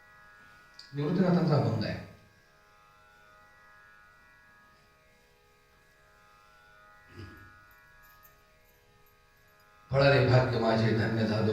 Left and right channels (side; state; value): both; identical; correlation 1.00